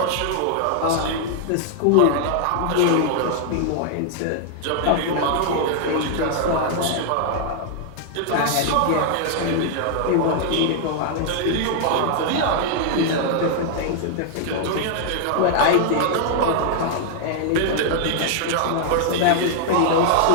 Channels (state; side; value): different; both; correlation 0.00